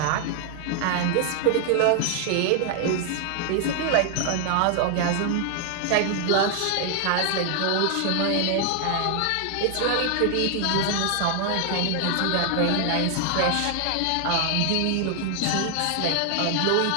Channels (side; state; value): both; different; correlation 0.00